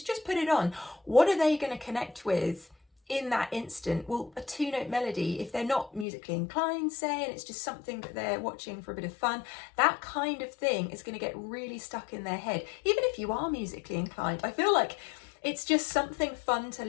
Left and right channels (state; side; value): drops out; right; at 6.1 s